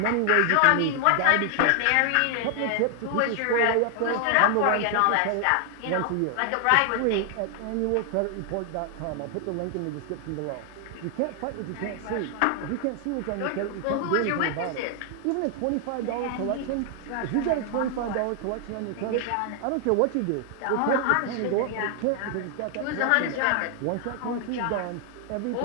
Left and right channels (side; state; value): both; different; correlation 0.00